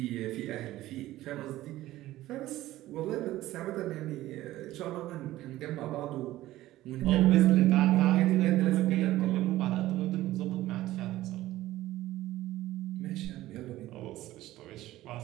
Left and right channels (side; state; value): left; quieter; 15.7 dB